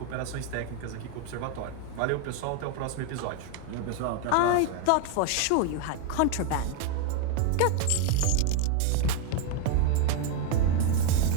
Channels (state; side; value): different; both; correlation 0.01